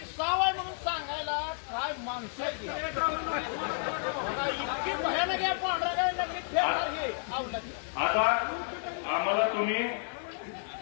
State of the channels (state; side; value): silent; right; digital silence